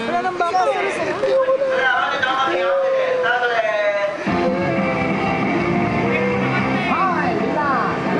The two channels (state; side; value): identical; both; correlation 1.00